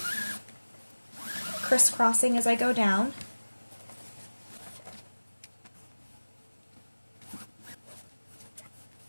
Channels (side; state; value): both; inverted; correlation -1.00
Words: crisscrossing as I go down.